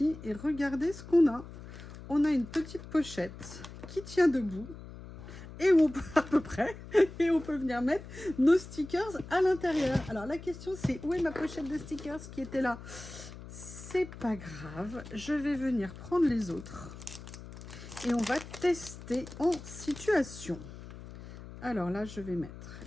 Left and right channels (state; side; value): noise; left; hum, 14 dB below the sound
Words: Et regardez ce qu'on a. On a une petite pochette qui tient debout. Et où on peut, à peu près, et on peut venir mettre nos stickers à l'intérieur. Alors la question c'est, où est ma pochette de stickers qui était là? C'est pas grave. Je vais venir prendre les autres. Et on va tester en situation. Alors là, je vais mettre